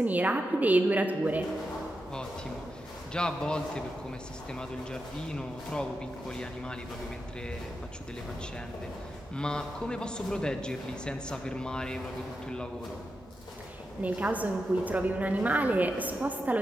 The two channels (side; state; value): both; normal; correlation 0.88